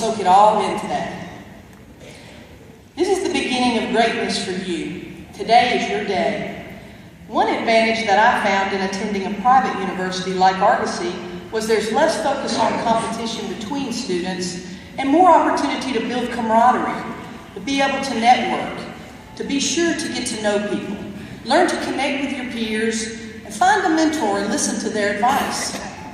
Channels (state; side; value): identical; both; correlation 1.00